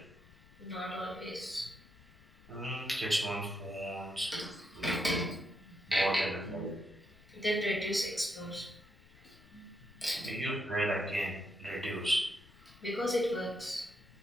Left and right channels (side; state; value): left; noise; rumble, 24 dB below the sound